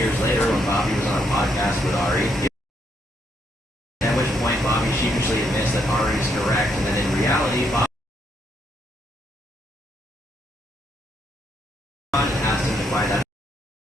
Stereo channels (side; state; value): both; normal; correlation 0.75